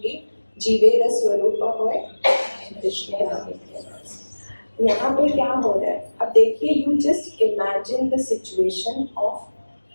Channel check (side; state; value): both; inverted; correlation -1.00